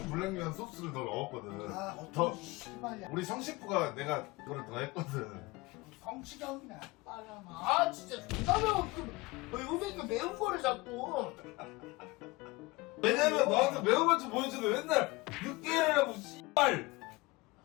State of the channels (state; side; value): quieter; right; 22.6 dB